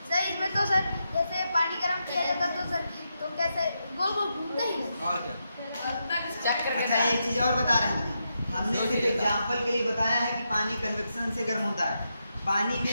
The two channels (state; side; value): inverted; both; correlation -0.84